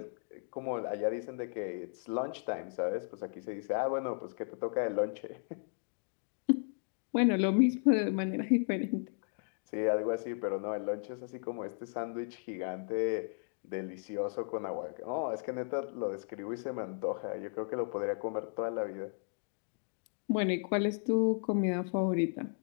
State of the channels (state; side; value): silent; right; digital silence